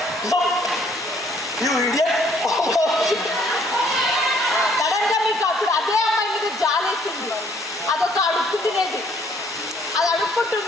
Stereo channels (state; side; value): normal; both; correlation 0.63